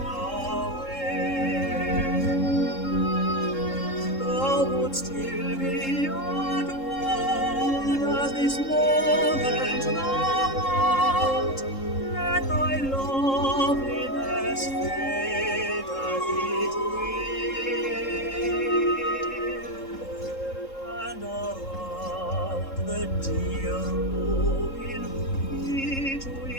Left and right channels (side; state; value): right; late; 3.7 ms